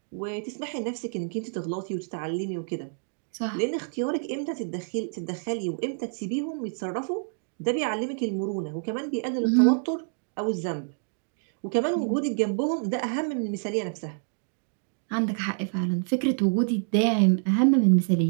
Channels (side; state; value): left; silent; digital silence